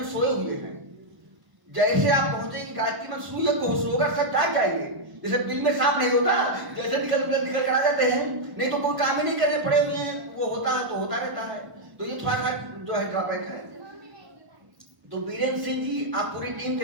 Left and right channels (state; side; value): late; left; 1.0 ms